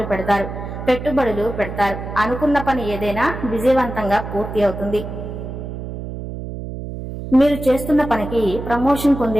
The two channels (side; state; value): right; noise; hum, 8 dB below the sound